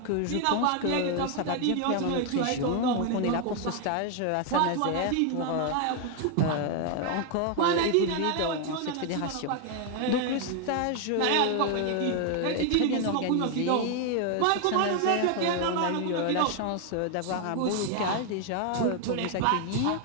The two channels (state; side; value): different; both; correlation 0.01